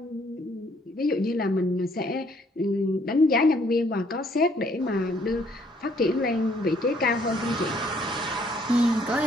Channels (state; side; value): normal; both; correlation 0.65